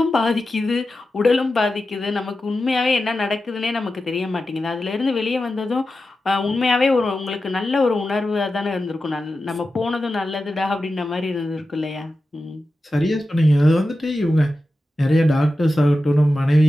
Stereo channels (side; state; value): both; normal; correlation 0.92